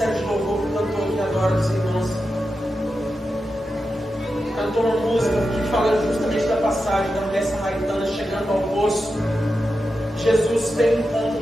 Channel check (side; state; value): both; normal; correlation 0.90